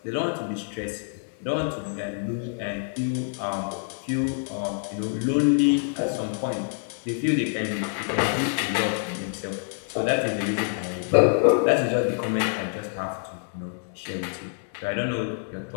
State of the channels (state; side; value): silent; right; digital silence